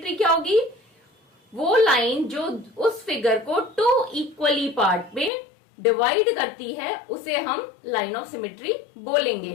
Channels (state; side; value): drops out; right; at 5.3 s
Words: क्या होगी, वो लाइन जो उस फिगर को 2 इक्वली पार्ट में डिवाइड करती है उसे हम लाइन ऑफ सिमेट्री बोलेंगे।